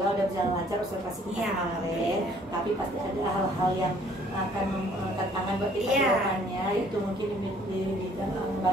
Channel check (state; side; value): normal; both; correlation 0.59